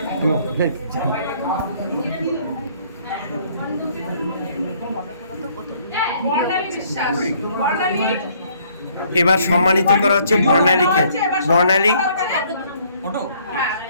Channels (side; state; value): both; inverted; correlation -0.63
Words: এবার সম্মানিত করা হচ্ছে বর্ণালীকে। বর্ণালী